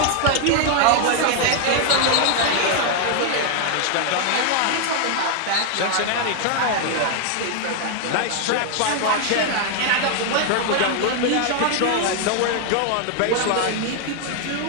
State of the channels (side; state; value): both; different; correlation 0.00